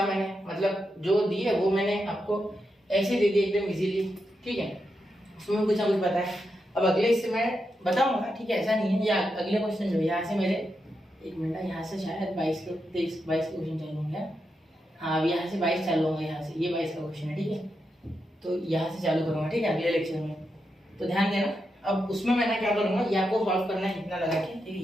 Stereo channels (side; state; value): both; normal; correlation 0.85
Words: मैंने, मतलब जो दी है वो मैंने आपको ऐसे दे दी एकदम इजीली, ठीक है, उसमें कुछ ना कुछ बताया। अब अगले इससे मैं बताऊंगा, ठीक है, ऐसा नहीं है। या अगले क्वेश्चन जो यहाँ से मेरे, एक मिनट, यहाँ से शायद 22 के 23 22 के क्वेश्चन चालू होंगे। हाँ, अब यहाँ से 22 चालू होंगे, यहाँ से ये 22 का क्वेश्चन है, ठीक है, तो यहाँ से चालू करूँगा, ठीक है, अगले लेक्चर में, तो ध्यान देना। अब उसमें मैं क्या करूँगा, ये आपको सॉल्व करना है इतना लगा के, ठीक है,